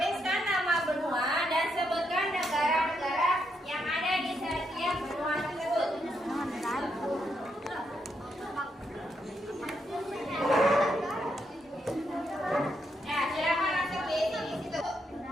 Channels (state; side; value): normal; both; correlation 0.79